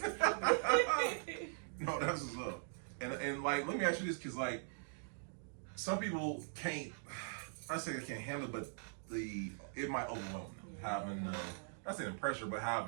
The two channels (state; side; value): silent; left; digital silence